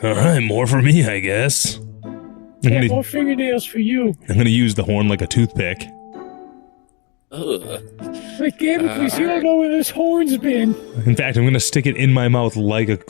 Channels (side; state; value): right; quieter; 31.4 dB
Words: All right, more for me, I guess. Yeah, more fingernails for you. I'm gonna use the horn like a toothpick. Ugh. Like, Gamblecles, you don't know where this horn's been. In fact, I'm gonna stick it in my mouth like a